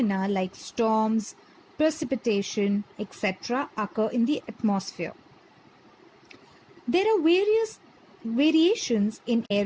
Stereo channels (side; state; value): both; identical; correlation 1.00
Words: like storms, precipitation, etc. occur in the atmosphere. There are various variations in